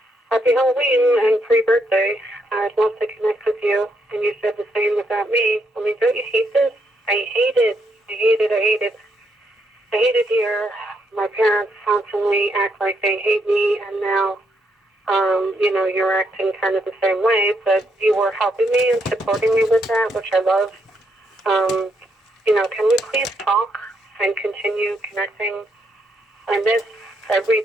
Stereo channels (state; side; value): normal; both; correlation 0.76